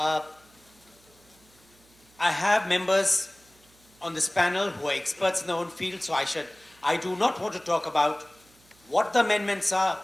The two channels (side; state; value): right; noise; hum, 30 dB below the sound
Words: have members on this panel who are experts in their own field, so I do not want to talk about what the amendments are